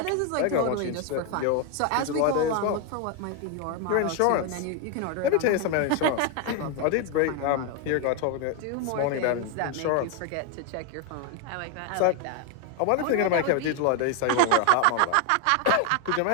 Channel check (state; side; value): different; both; correlation 0.01